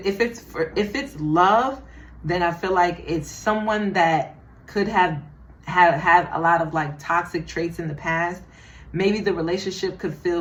it's love, then I feel like it's someone that could have had a lot of like toxic traits in the past. Maybe the relationship could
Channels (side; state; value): both; identical; correlation 1.00